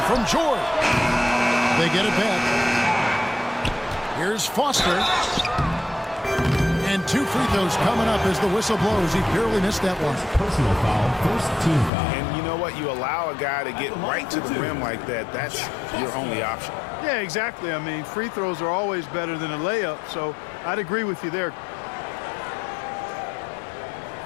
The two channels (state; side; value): drops out; right; at 11.9 s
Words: from George. They get it back. Here's Foster. And 2 free throws coming up as the whistle blows. He barely missed that one. Personal foul, first team foul. And you know what? You allow a guy to get right to the rim like that. That's your only option. Yeah, exactly. I mean, free throws are always better than a layup, so I'd agree with you there.